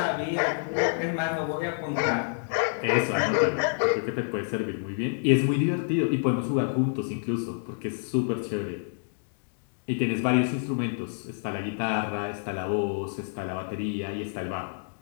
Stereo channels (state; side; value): silent; right; digital silence